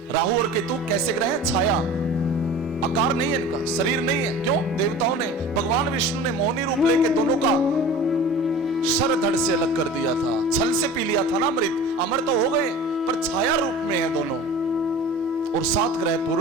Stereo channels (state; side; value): normal; both; correlation 0.39